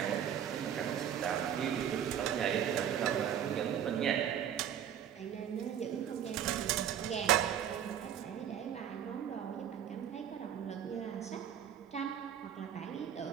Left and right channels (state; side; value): quieter; left; 9.5 dB